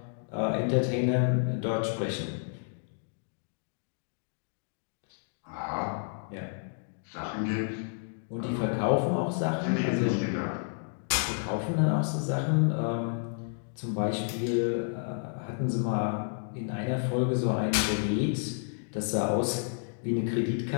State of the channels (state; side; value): silent; right; digital silence